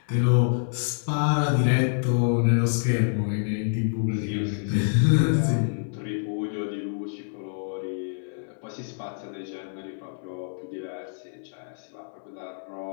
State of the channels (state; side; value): silent; right; 60 dB below the other